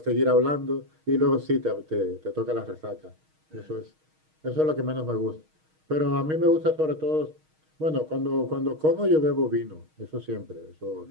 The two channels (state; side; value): late; left; 6.4 ms